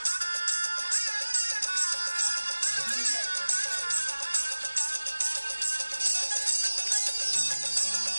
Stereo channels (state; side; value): inverted; both; correlation -1.00